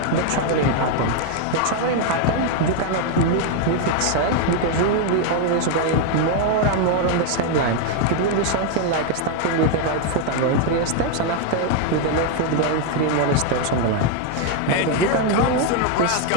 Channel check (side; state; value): both; different; correlation 0.01